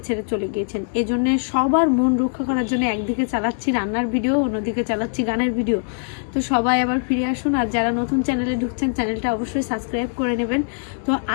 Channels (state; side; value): silent; right; 64 dB below the other